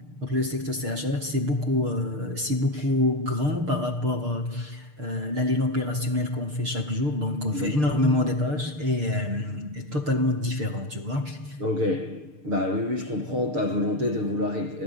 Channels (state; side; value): late; left; 6.7 ms